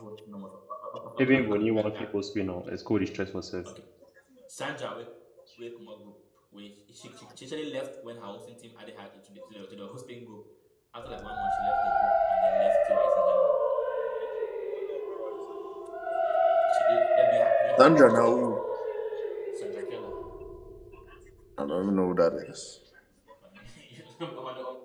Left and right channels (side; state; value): both; identical; correlation 1.00